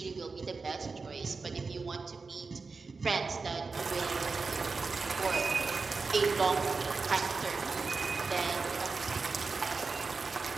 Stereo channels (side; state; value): left; quieter; 4.3 dB